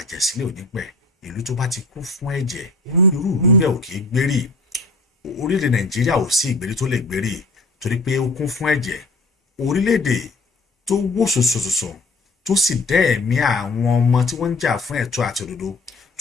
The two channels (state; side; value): quieter; right; 3.2 dB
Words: ò ní pẹ̀. Ìlú tó bá ti kú fún ẹ̀jẹ̀, irú ìlú bẹ́ẹ̀ ò kì í gbérí. Orílẹ̀-èdè Nàìjíríà ò sí ìgbérí tó lè gbérí torí pé ó kún fún ẹ̀jẹ̀. Orílẹ̀-èdè tó wó sòsòsòsò tó sì dá ẹ̀mí àwọn ọmọ tí wọ́n ń jà fún ẹ̀tọ́ àti òdodo